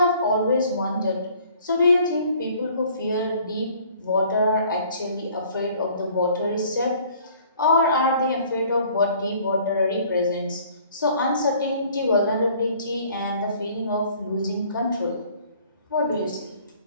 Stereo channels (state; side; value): inverted; both; correlation -0.56